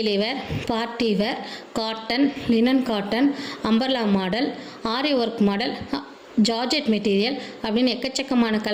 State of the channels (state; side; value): identical; both; correlation 1.00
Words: wear, party wear, cotton, linen cotton, umbrella model, aari work model, georgette material அப்படின்னு எக்கச்சக்கமான